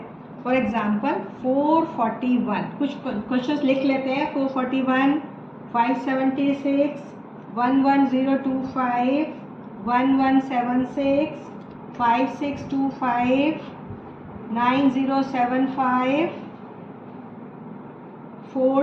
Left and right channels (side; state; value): both; identical; correlation 1.00